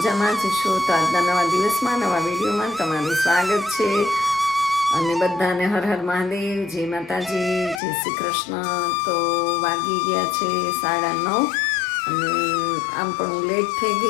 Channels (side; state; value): right; drops out; at 7.8 s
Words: જ છો. તો આજના નવા દિવસમાં નવા વિડીયોમાં તમારું સ્વાગત છે. અને બધાને હર હર મહાદેવ, જય માતાજી, જય શ્રી કૃષ્ણ. તો વાગી ગયા છે 9:30 અને આમ પણ હું લેટ થઈ